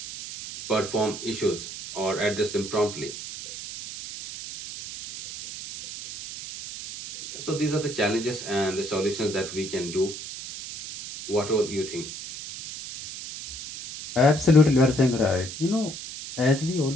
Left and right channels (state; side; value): noise; right; hiss, 10 dB below the sound